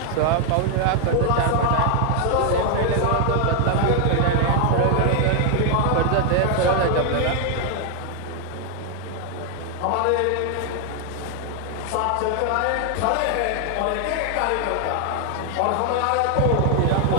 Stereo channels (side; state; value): both; different; correlation 0.00